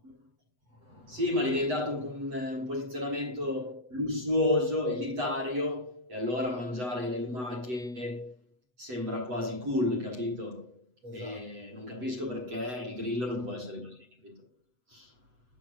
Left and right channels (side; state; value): left; late; 8.0 ms